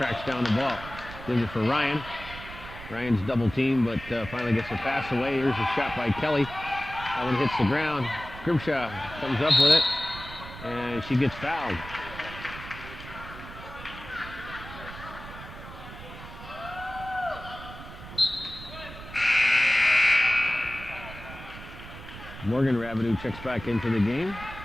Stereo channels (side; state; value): right; noise; rumble, 14 dB below the sound